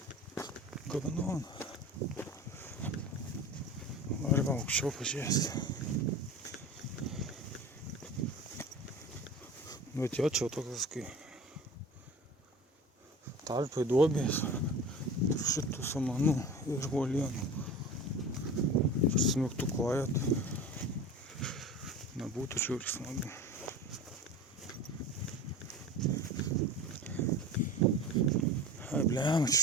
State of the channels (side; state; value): both; normal; correlation 0.35